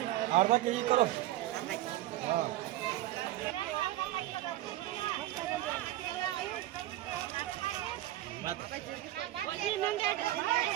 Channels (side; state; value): left; quieter; 15.0 dB